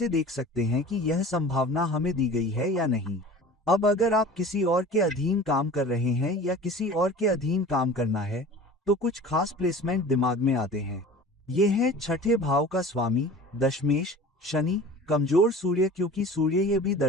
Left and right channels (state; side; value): normal; both; correlation 0.40